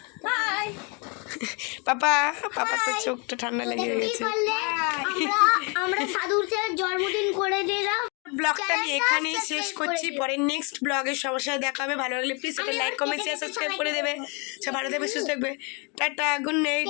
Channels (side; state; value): right; quieter; 32.9 dB